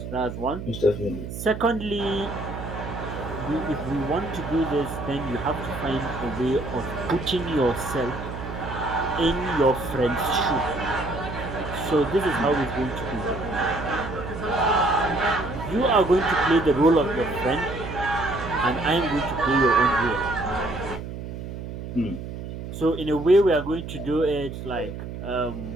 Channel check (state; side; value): noise; right; hum, 8 dB below the sound